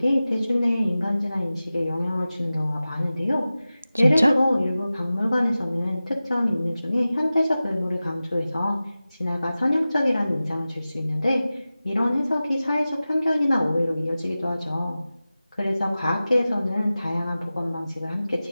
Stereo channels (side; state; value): both; inverted; correlation -0.96